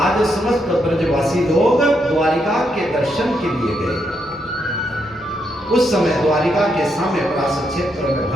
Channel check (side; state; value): both; normal; correlation 0.79